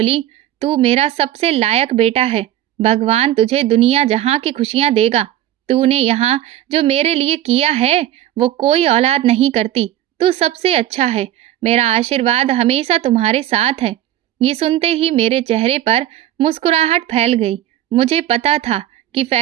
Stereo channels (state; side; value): quieter; left; 12.7 dB